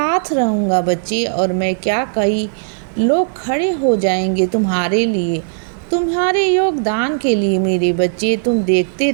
रहूँगा बच्चे। और मैं क्या, कई लोग खड़े हो जाएंगे तुम्हारे लिए, तुम्हारे योगदान के लिए मेरे बच्चे। तुम देखते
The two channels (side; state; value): left; silent; digital silence